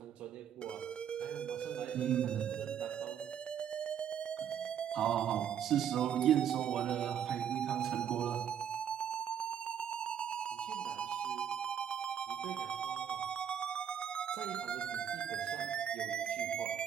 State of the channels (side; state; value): left; quieter; 8.9 dB